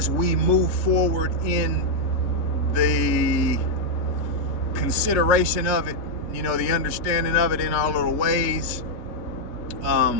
we move forward in the consideration of it, the understanding of it in our little ways,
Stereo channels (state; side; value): late; right; 3.8 ms